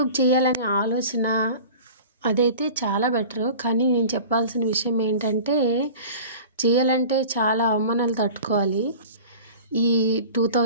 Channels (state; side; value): inverted; both; correlation -0.40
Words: చేయాలనే ఆలోచన అదైతే చాలా బెటరు, కానీ నేను చెప్పాల్సిన విషయం ఏంటంటే చేయాలంటే చాలా అవమానాలు తట్టుకోవాలి. ఈ